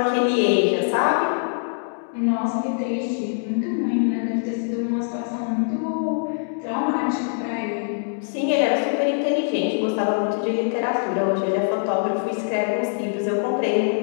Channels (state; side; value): silent; right; digital silence